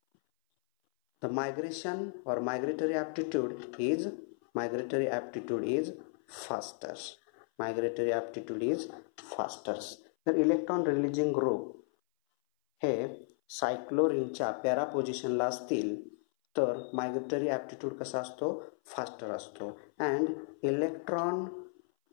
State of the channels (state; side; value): silent; right; 55 dB below the other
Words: The migration or migratory aptitude is faster. तर electron releasing group हे सायक्लोरीनच्या पॅरा पोझिशनला असतील तर migratory aptitude कसा असतो, फास्टर असतो. And electron